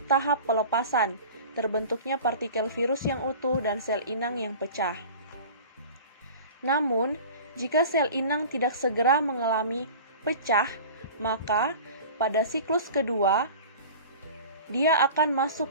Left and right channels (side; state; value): both; inverted; correlation -0.38